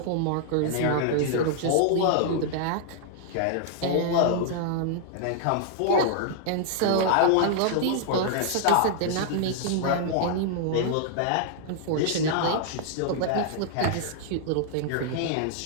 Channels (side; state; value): both; different; correlation -0.01